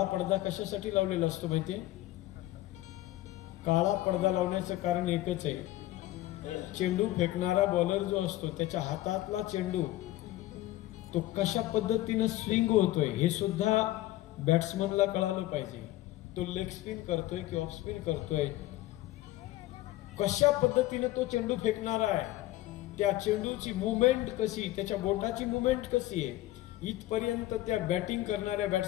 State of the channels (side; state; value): right; quieter; 16.2 dB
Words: पडदा कशासाठी लावलेला असतो माहितीये? काळा पडदा लावण्याचं कारण एकच आहे. चेंडू फेकणारा बॉलर जो असतो त्याच्या हातातला चेंडू तो कशा पद्धतीने स्विंग होतोय हे सुद्धा बॅट्समनला कळालं पाहिजे. तो लेग स्पिन करतोय की ऑफ स्पिन करतोय, कशा पद्धतीने तो चेंडू फेकणारा आहे, त्या चेंडूची मुवमेंट कशी, त्याच्या बोटाची मुवमेंट कशी आहे, इथपर्यंत त्या बॅटिंग करणाऱ्या